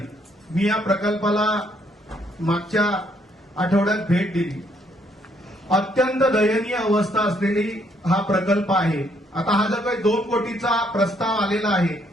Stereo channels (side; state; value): both; normal; correlation 0.70